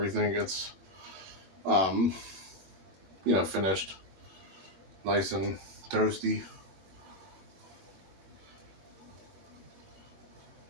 gets, um, finished, nice and toasty.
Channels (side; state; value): left; late; 21 ms